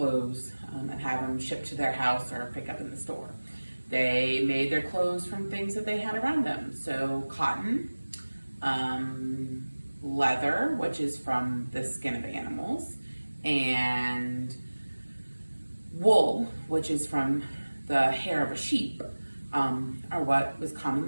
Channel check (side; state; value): both; inverted; correlation -1.00